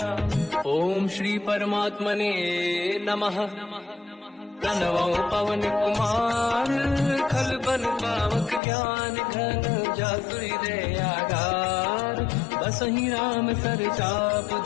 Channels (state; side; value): drops out; right; at 8.6 s